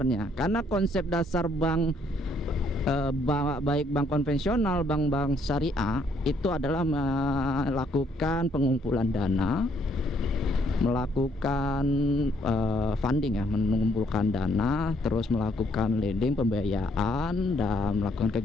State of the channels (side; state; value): both; normal; correlation 0.69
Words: karena konsep dasar bank baik bank konvensional, bank syariah itu adalah melakukan pengumpulan dana, melakukan funding ya, mengumpulkan dana, terus melakukan lending, pembiayaan, dan melakukan